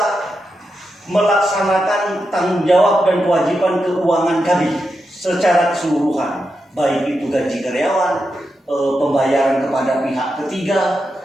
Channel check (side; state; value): both; normal; correlation 0.87